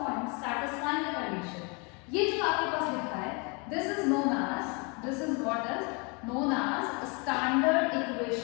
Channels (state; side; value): quieter; right; 31.4 dB